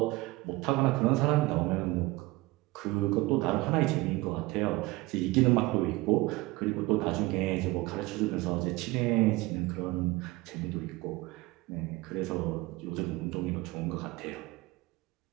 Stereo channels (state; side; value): quieter; left; 21.1 dB